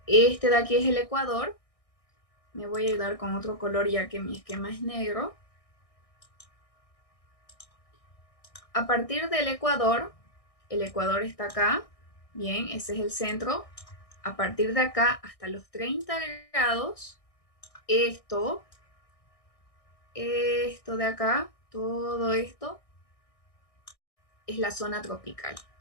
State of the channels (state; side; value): late; right; 1.6 ms